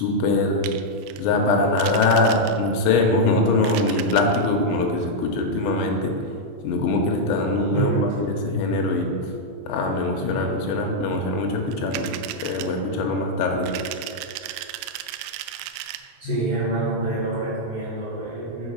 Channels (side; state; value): both; normal; correlation -0.03